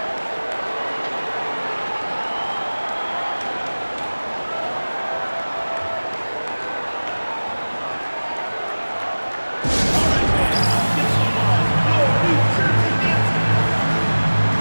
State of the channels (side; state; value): both; inverted; correlation -1.00